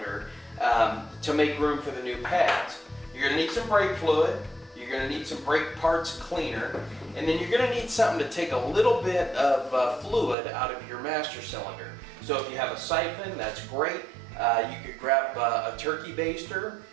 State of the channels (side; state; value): left; drops out; at 10.4 s